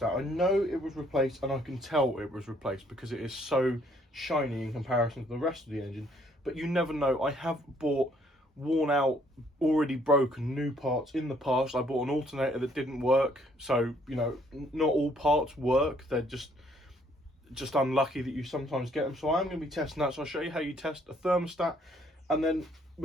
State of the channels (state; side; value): normal; both; correlation 0.65